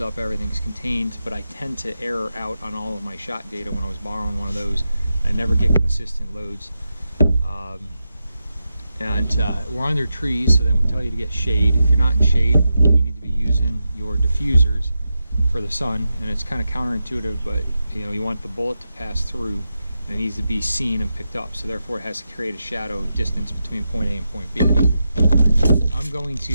up, everything's contained, but I tend to error out on all of my shot data when I was borrowing one of those. I never get consistent loads. We're under trees, so they would tell you to get shade. If you're not in shade, you need to be using your diffusers for the sun, and it's kind of counterintuitive, but you want the bullet to pass through, and it needs to be seen and picked up, so therefore it has to create a shadow distance between point A and point B. I'm going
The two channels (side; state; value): both; inverted; correlation -0.89